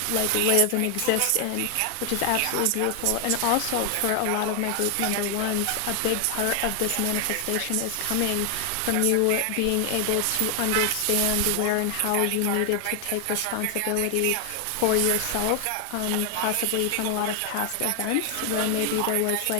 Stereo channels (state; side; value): different; both; correlation 0.00